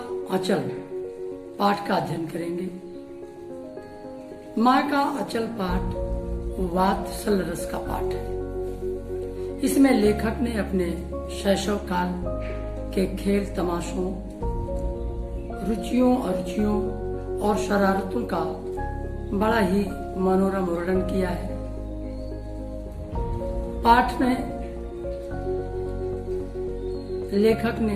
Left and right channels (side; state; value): both; identical; correlation 1.00